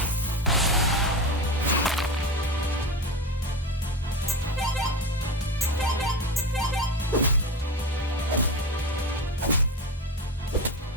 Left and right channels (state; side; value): normal; both; correlation 0.24